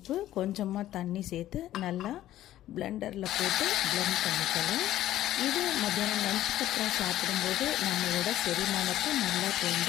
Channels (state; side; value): quieter; right; 13.6 dB